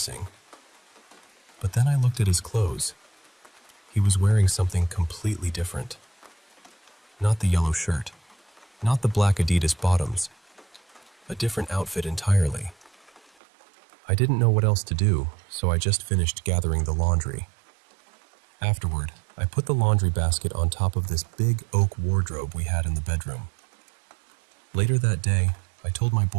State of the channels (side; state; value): left; drops out; at 13.2 s